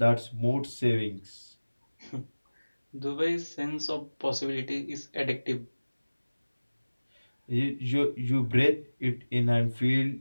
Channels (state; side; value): inverted; both; correlation -1.00